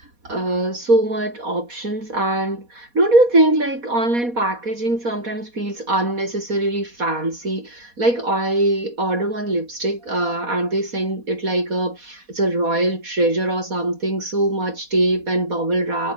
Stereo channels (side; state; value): left; late; 4.2 ms